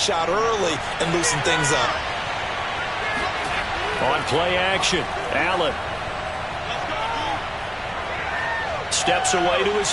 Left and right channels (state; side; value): identical; both; correlation 1.00